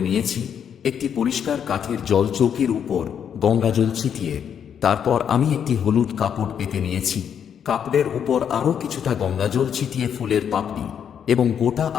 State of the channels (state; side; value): quieter; right; 8.3 dB